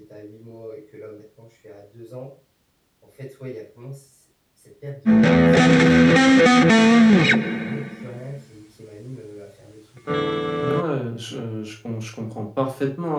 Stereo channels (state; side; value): identical; both; correlation 1.00